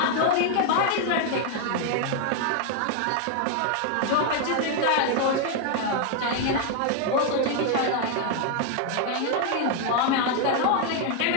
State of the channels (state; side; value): different; both; correlation 0.00